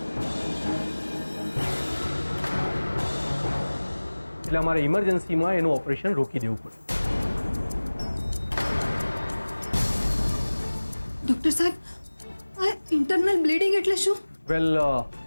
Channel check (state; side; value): inverted; both; correlation -1.00